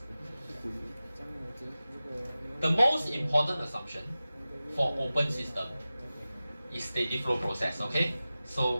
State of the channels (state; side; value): inverted; both; correlation -0.96